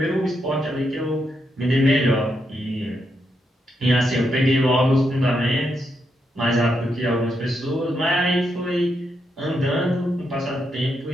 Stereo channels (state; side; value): normal; both; correlation 0.81